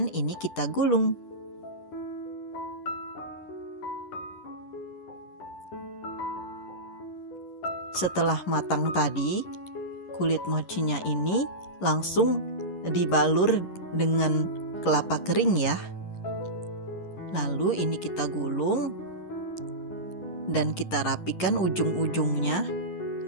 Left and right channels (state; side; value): late; right; 10 ms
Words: ini kita gulung. Setelah matang tadi, kulit mochinya ini langsung dibalur dengan kelapa kering ya. Lalu ini kita gulung dan kita rapikan ujung-ujungnya